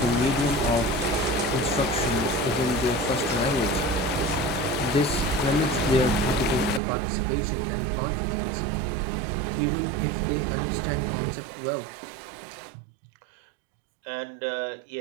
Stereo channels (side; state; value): left; drops out; at 6.8 s